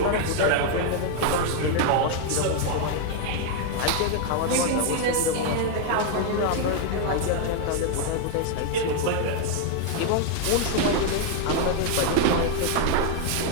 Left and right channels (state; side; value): different; both; correlation 0.00